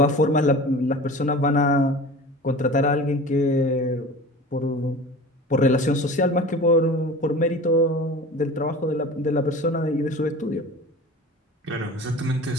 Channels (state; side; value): normal; both; correlation 0.37